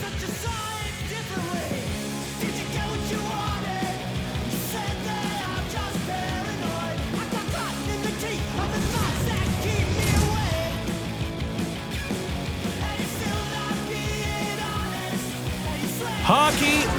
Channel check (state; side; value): identical; both; correlation 1.00